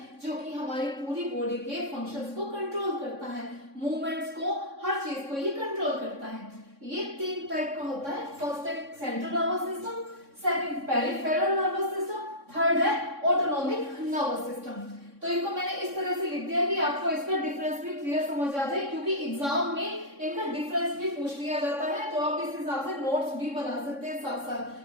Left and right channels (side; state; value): left; late; 3.6 ms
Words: जो कि हमारी पूरी बॉडी के फंक्शंस को कंट्रोल करता है, मूवमेंट्स को, हर चीज को ये कंट्रोल करता है। ये 3 टाइप का होता है। फर्स्ट है central nervous system, second peripheral nervous system, third है ऑटोनॉमिक नर्वस सिस्टम। तो इनको मैंने इस तरह से लिख दिया कि आपको इसका डिफरेंस भी क्लियर समझ आ जाए, क्योंकि एग्जाम में इनका डिफरेंस भी पूछ लिया जाता है। तो आप इस हिसाब से नोट्स भी बना सकते हैं साथ साथ,